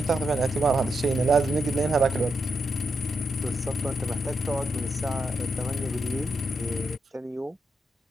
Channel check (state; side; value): normal; both; correlation 0.83